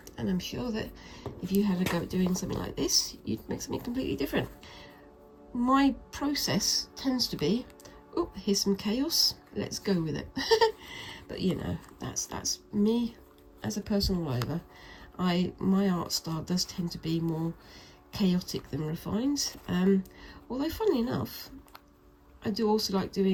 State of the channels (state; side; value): identical; both; correlation 1.00